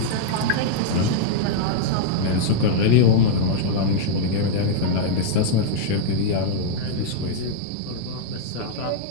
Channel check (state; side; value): different; both; correlation -0.02